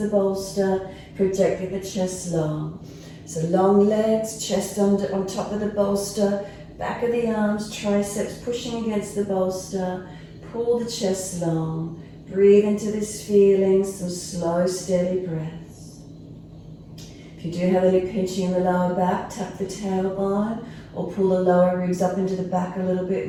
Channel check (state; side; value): identical; both; correlation 1.00